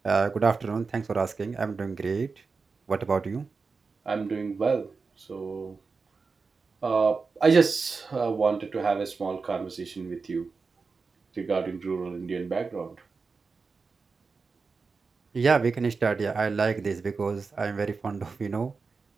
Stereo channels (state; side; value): quieter; left; 4.6 dB